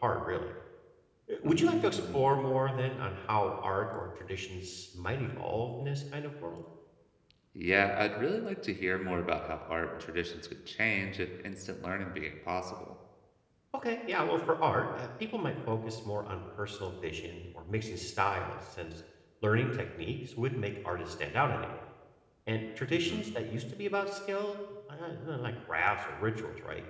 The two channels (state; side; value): identical; both; correlation 1.00